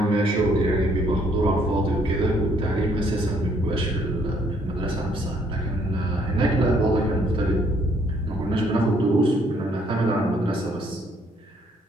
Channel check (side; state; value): both; normal; correlation 0.66